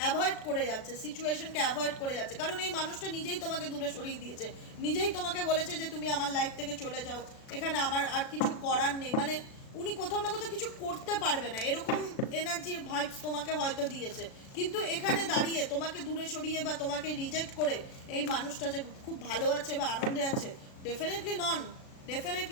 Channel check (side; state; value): right; late; 36 ms